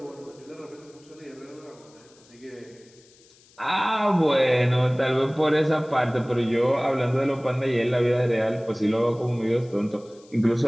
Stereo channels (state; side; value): noise; left; hiss, 28 dB below the sound